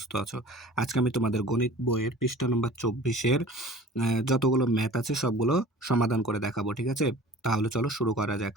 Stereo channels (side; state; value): both; normal; correlation 0.44